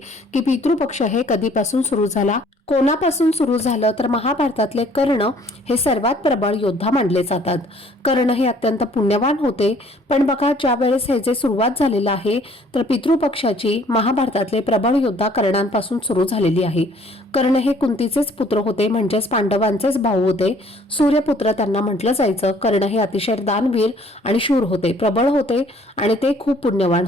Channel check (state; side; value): normal; both; correlation 0.58